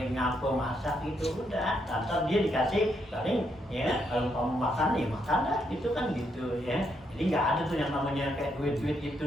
nyapu, masak gitu udah, ntar dia dikasih paling ya kalau kamu makan nih makan dah gitu kan gitu ya. Jadi nggak ada tuh yang namanya kayak duit gitu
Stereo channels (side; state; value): both; normal; correlation 0.77